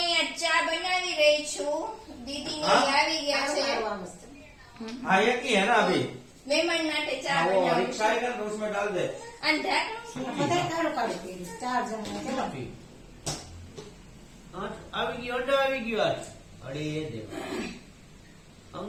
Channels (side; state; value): both; identical; correlation 1.00